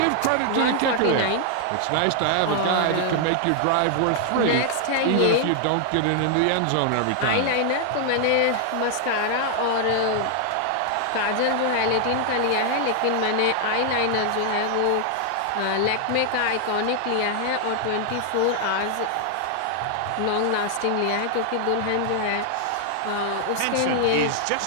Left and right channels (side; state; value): both; different; correlation 0.00